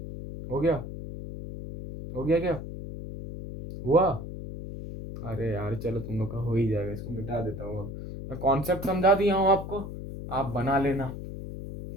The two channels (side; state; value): left; noise; hum, 9 dB below the sound